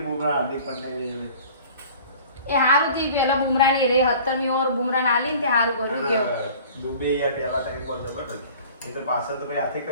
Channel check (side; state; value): both; inverted; correlation -0.46